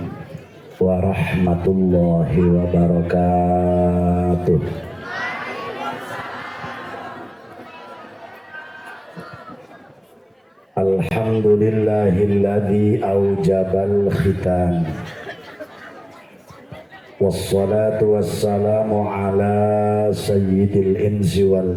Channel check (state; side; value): identical; both; correlation 1.00